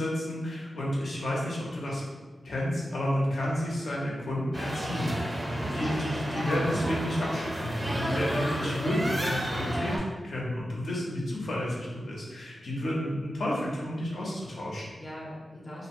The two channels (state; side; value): normal; both; correlation 0.90